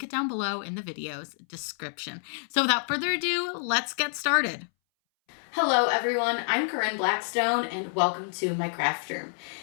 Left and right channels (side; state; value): right; silent; 59 dB below the other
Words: it down below in the video's description. So without further ado, let's get started. Hello everyone, I'm Corinne Blackstone and welcome to my craft room.